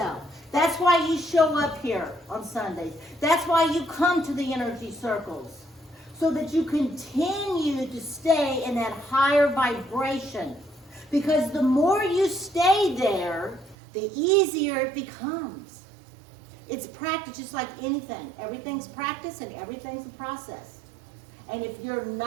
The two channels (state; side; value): drops out; left; at 13.8 s